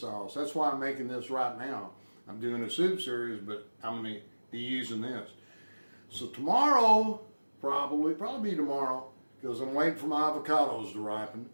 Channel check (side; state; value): both; inverted; correlation -1.00